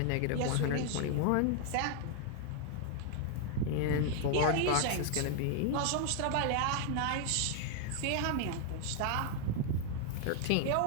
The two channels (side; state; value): both; different; correlation 0.00